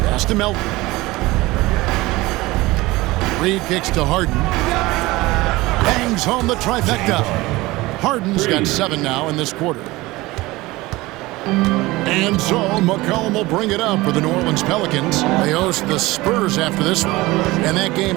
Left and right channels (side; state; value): left; quieter; 20.1 dB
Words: Pass to Melton. Reed kicks to Harden. Bangs home the trifecta. Harden's got 7 now in this quarter. And so McCollum will bring it up for the New Orleans Pelicans. They host the Spurs after this one. And that game